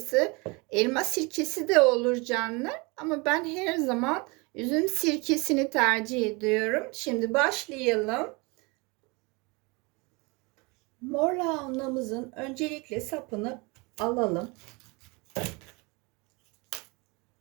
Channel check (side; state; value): left; quieter; 27.8 dB